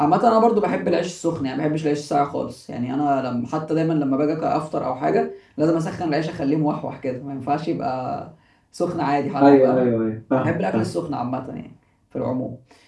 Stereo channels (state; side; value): identical; both; correlation 1.00